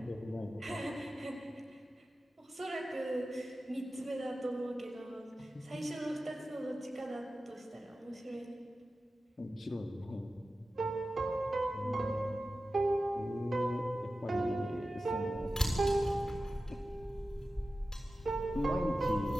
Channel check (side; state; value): both; normal; correlation 0.94